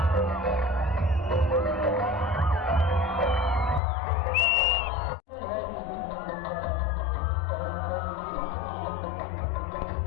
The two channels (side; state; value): right; drops out; at 3.8 s